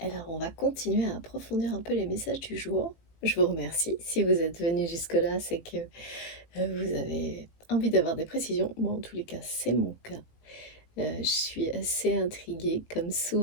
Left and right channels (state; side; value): late; right; 18 ms